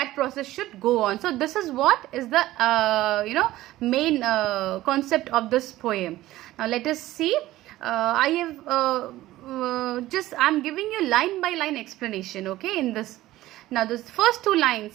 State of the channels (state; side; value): quieter; left; 16.0 dB